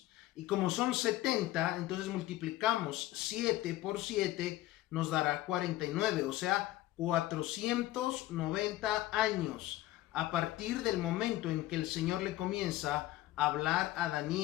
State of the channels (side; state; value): right; quieter; 15.9 dB